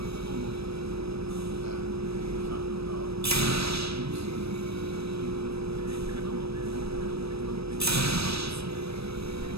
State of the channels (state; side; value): late; left; 0.78 ms